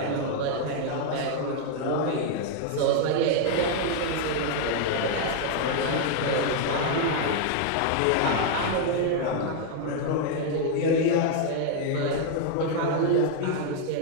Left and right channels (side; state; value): both; different; correlation 0.00